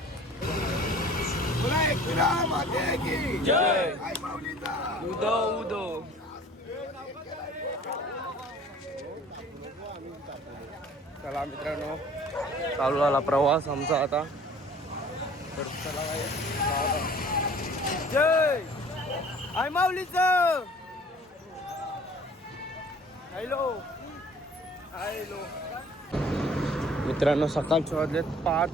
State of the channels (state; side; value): normal; both; correlation 0.50